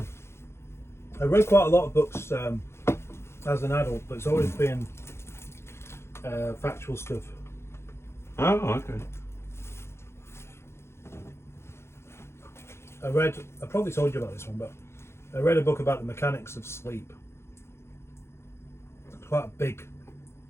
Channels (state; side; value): late; right; 0.12 ms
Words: read quite a lot of books as an adult, but it's always been factual stuff. Oh, okay. I probably told you about this one, but I read a book about the mechanics of sleep. It's quite a big